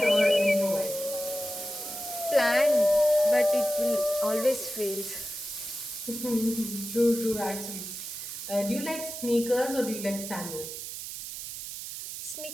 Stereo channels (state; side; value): noise; right; hiss, 8 dB below the sound